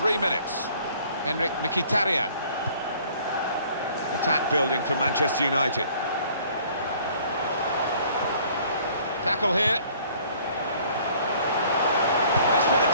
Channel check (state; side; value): inverted; both; correlation -0.56